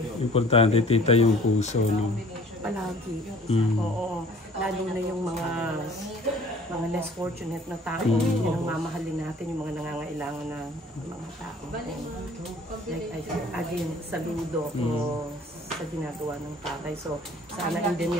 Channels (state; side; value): normal; both; correlation 0.51